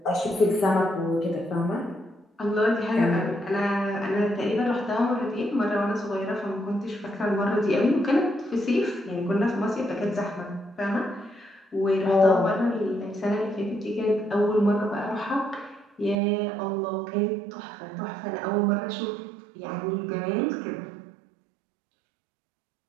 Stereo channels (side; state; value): left; drops out; at 16.2 s